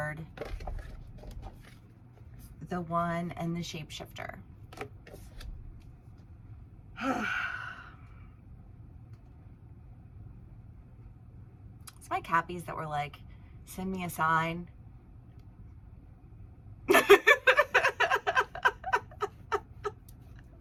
the One, and the Shapeshifter. It's my Cappies that were like, send me a sign.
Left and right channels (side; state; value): both; identical; correlation 1.00